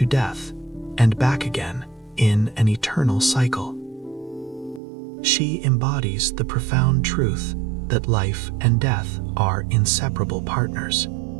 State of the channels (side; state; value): left; drops out; at 4.8 s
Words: death, and back again in an eternal cycle. She embodies the profound truth that life and death are inseparable partners.